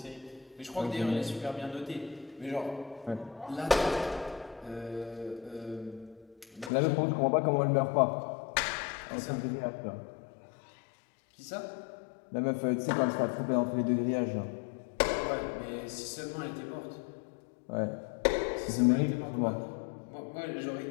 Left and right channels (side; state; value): right; drops out; at 6.7 s